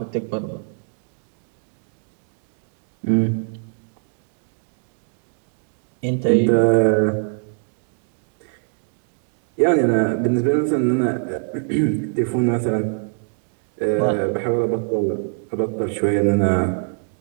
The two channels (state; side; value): silent; left; 63 dB below the other